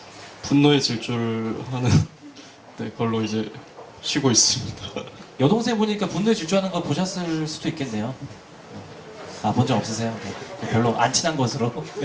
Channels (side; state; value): both; identical; correlation 1.00